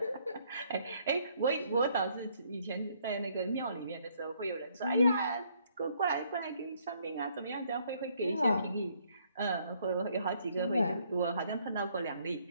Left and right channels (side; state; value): both; inverted; correlation -0.67